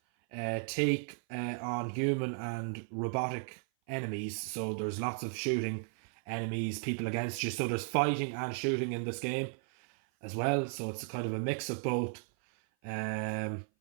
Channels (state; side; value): silent; left; 55 dB below the other